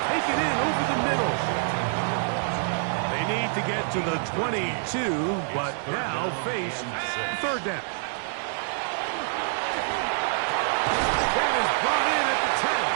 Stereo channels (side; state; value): left; silent; digital silence